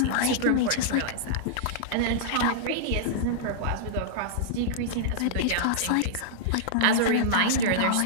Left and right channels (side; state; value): both; different; correlation -0.02